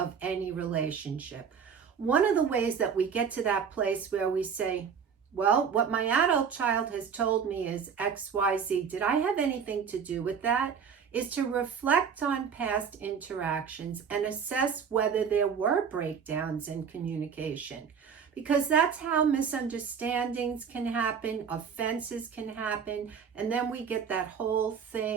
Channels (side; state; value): left; quieter; 6.8 dB